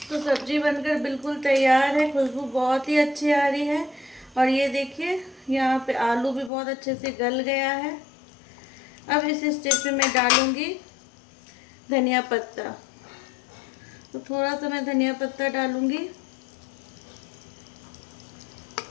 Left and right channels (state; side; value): drops out; right; at 6.5 s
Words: तो सब्जी बनकर बिल्कुल तैयार है, खुशबू बहुत ही अच्छी आ रही है। और ये देखिए, यहाँ पे आलू भी बहुत अच्छे से गल गया है। अब इस स्टेज पे मैं डालूंगी धनिया पत्ता। तो थोड़ा सा मैं धनिया पत्ता डालूंगी,